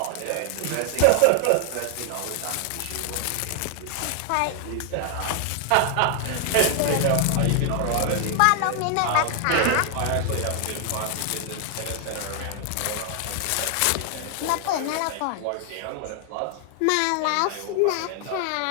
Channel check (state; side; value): different; both; correlation 0.00